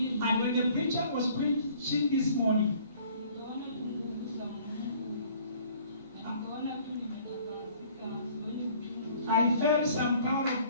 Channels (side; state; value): both; inverted; correlation -0.54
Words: And when the preacher was preaching this morning, I felt some power